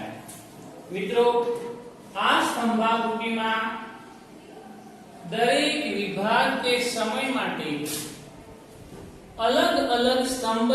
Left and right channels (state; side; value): identical; both; correlation 1.00